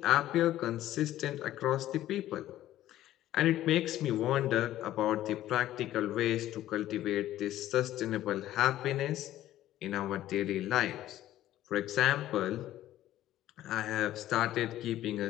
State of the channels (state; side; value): quieter; right; 13.6 dB